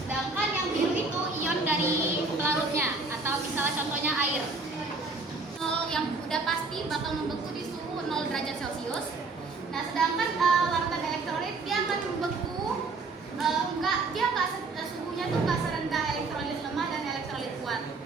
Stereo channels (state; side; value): quieter; left; 3.7 dB